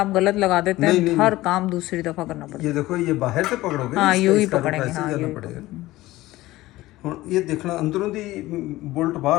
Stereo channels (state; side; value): quieter; right; 17.5 dB